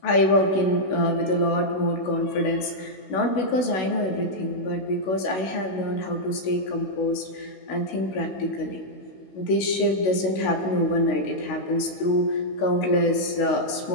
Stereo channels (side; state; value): right; late; 16 ms